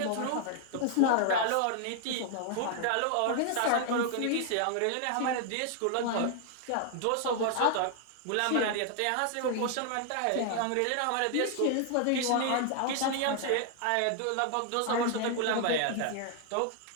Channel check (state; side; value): different; both; correlation 0.00